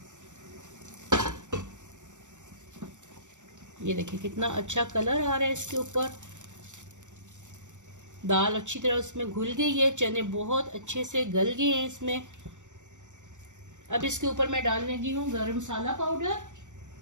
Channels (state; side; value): late; left; 0.85 ms